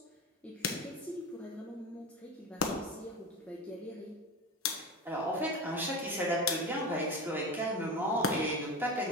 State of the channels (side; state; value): both; normal; correlation 0.25